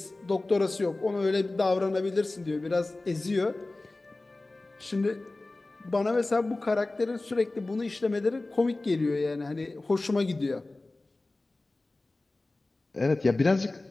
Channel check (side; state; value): right; quieter; 3.0 dB